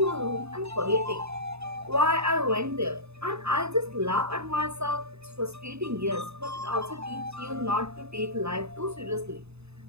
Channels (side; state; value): left; late; 0.80 ms